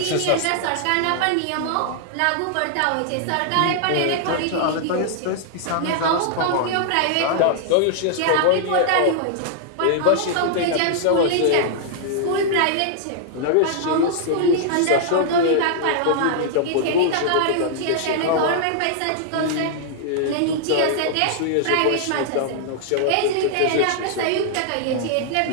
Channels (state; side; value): different; both; correlation -0.01